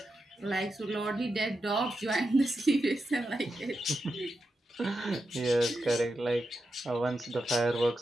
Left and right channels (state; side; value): normal; both; correlation 0.88